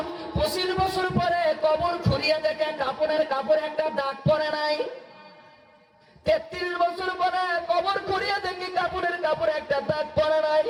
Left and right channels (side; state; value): both; identical; correlation 1.00